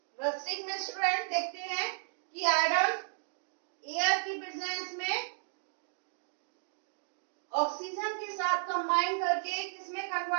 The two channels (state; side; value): silent; left; digital silence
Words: Rusting में स्टूडेंट देखते हैं कि आयरन एयर की प्रेजेंस में ऑक्सीजन के साथ कंबाइन करके किसमें